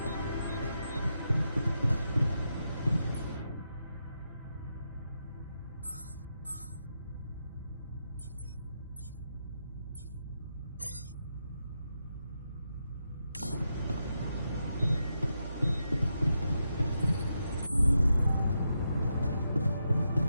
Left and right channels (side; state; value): both; inverted; correlation -0.85